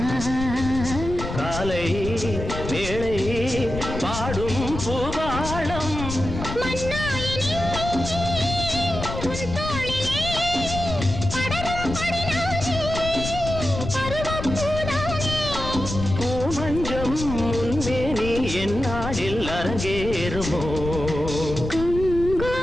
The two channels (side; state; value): left; noise; rumble, 7 dB below the sound